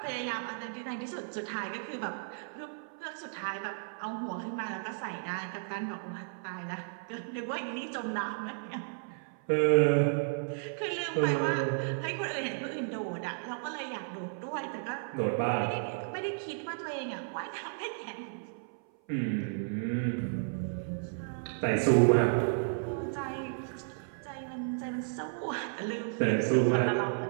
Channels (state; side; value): silent; left; 56 dB below the other